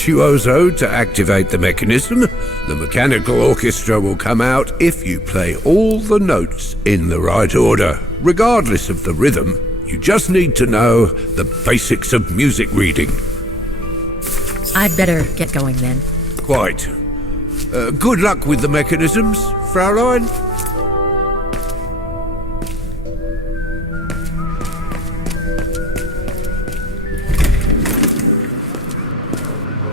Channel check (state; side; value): normal; both; correlation 0.59